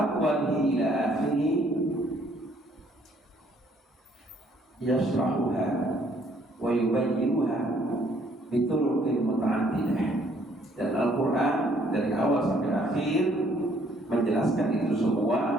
ila akhirih yashrahuha wa yubayyinuha bituruqin muta'addidah. Dan Al-Quran dari awal sampai akhir menjelaskan itu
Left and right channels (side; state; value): both; normal; correlation 0.64